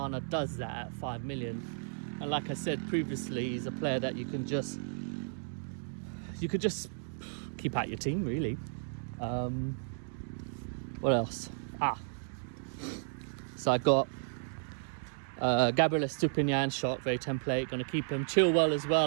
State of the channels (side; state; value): left; silent; digital silence